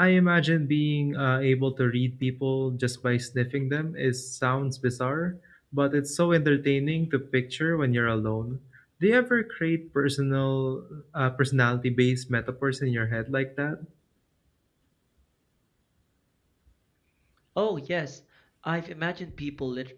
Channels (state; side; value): identical; both; correlation 1.00